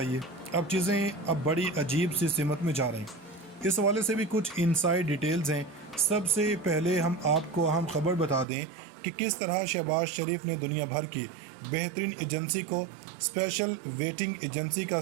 अब चीज़ें अब बड़ी अजीब सी सिमत में जा रही हैं। इस हवाले से भी कुछ इनसाइड डिटेल्स हैं। सबसे पहले हम आपको अहम खबर बता दें कि किस तरह शहबाज शरीफ ने दुनिया भर की बेहतरीन एजेंसी को स्पेशल वेटिंग एजेंसी का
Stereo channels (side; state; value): left; drops out; at 8.5 s